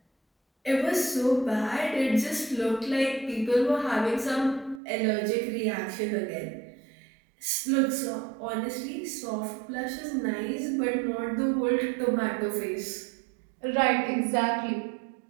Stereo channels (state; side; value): drops out; left; at 4.8 s